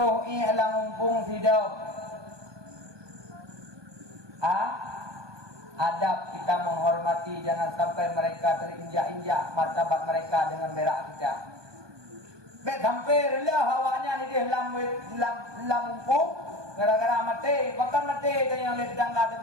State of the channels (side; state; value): left; late; 1.2 ms